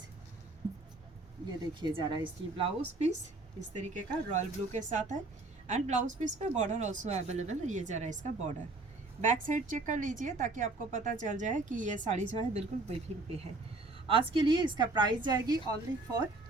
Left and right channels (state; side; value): quieter; left; 3.1 dB